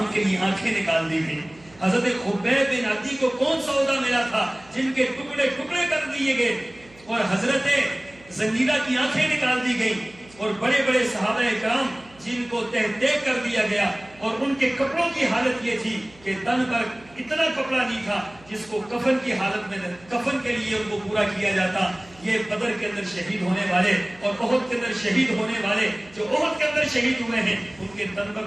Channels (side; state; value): right; noise; hum, 26 dB below the sound